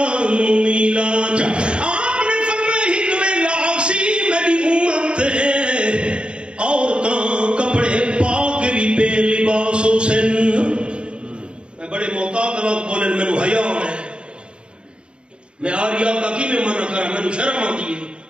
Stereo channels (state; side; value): late; left; 0.053 ms